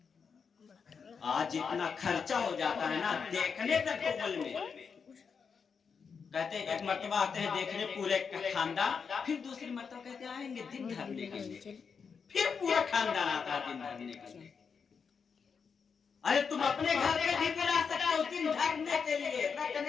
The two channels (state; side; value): quieter; right; 6.0 dB